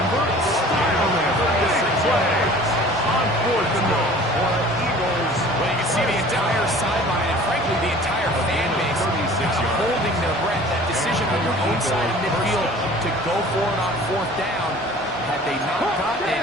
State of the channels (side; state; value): both; normal; correlation 0.46